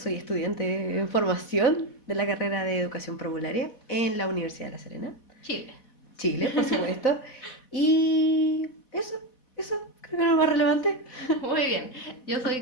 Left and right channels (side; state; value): right; late; 4.1 ms